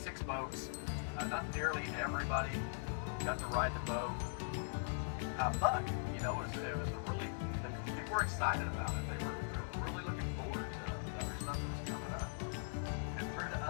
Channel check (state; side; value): silent; right; 50 dB below the other